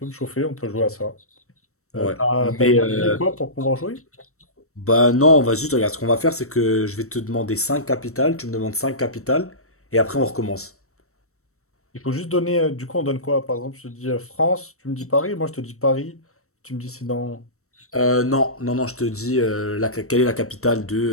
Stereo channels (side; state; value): right; late; 0.63 ms